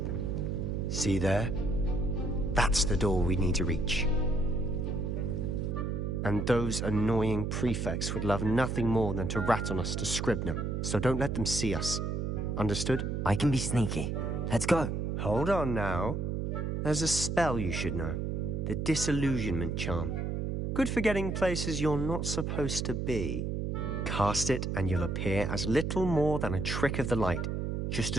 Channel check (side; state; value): right; noise; hum, 1 dB below the sound